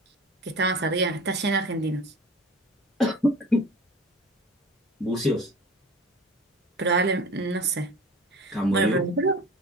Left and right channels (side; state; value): both; normal; correlation 0.38